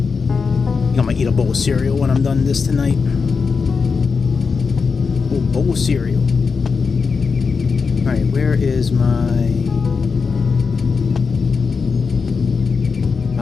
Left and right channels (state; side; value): quieter; right; 5.1 dB